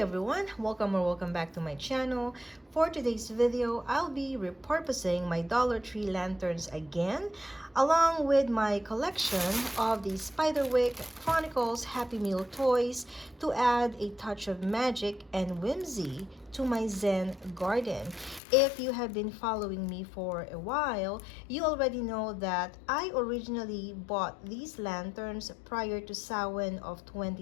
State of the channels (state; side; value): drops out; right; at 18.4 s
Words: everyone, welcome back to my channel. For today's video, I'll be repurposing my Dollar Tree lanterns again, along with my collection of the Spiderwick Chronicles Happy Meal toys to add a touch of magic and whimsy to my Zen garden. If you have been following me for a while, you already know that I originally bought these lanterns prior to Samhain of